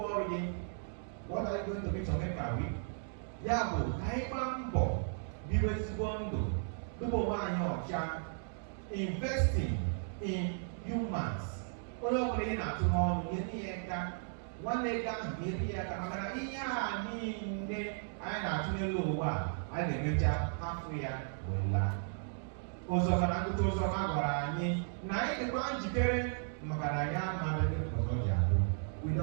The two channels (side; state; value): left; silent; digital silence